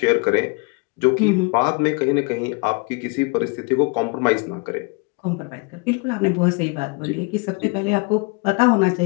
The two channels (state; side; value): quieter; right; 30.9 dB